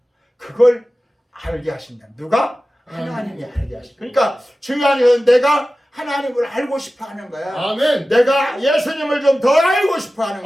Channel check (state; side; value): normal; both; correlation 0.95